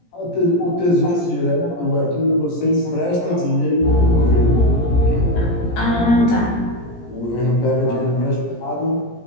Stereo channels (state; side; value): late; right; 17 ms